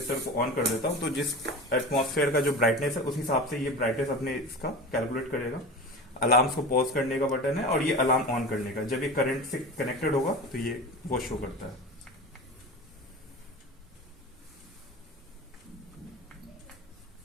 को ऑन कर देता हूँ, तो जिस एटमॉस्फेयर का जो ब्राइटनेस है उस हिसाब से ये ब्राइटनेस अपने इसका कैलकुलेट करेगा। अलार्म्स को पॉज करने का बटन है, और ये अलार्म ऑन करने का, जब ये करंट से कनेक्टेड होगा तो ये वो शो करता है।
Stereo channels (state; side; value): normal; both; correlation 0.31